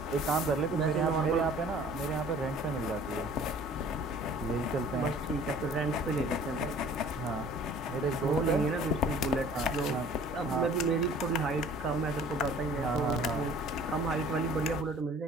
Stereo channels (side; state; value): both; normal; correlation 0.50